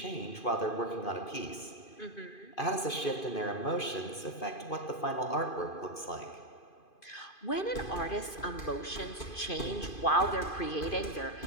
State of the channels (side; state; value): right; late; 2.5 ms